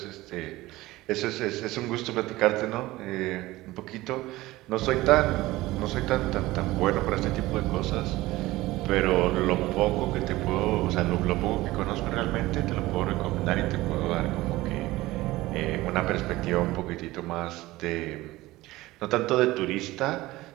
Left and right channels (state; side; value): quieter; left; 18.4 dB